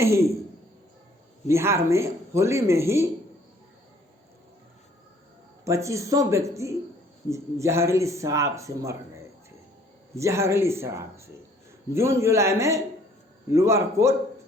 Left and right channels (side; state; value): both; normal; correlation 0.59